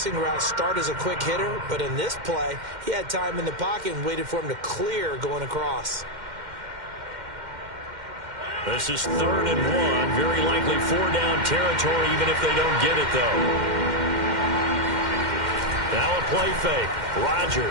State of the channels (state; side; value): late; left; 2.1 ms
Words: route start as a quick hitter, but in this play, he had time in the pocket and waited for him to clear going across. This is 3rd and 1. Very likely 4-down territory, even if they don't get it, though. Now a play fake.